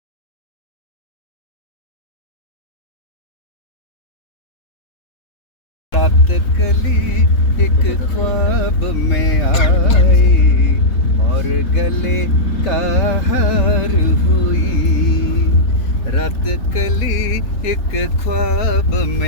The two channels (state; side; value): late; right; 3.7 ms